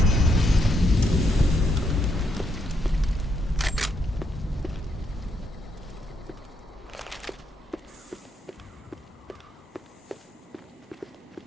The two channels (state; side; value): normal; both; correlation 0.77